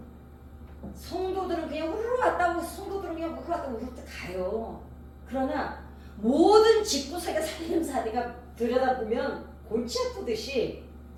성도들은 그냥 우르르 왔다고, 성도들은 그냥 우르르 왔다고 우르르 가요. 그러나 모든 직구석의 살림살이가 들여다보면 골치 아프듯이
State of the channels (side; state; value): both; identical; correlation 1.00